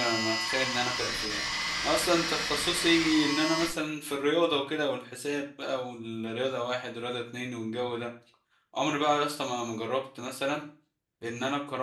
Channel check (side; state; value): both; identical; correlation 1.00